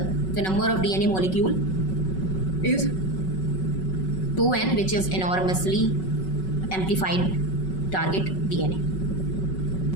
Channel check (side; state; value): right; late; 5.3 ms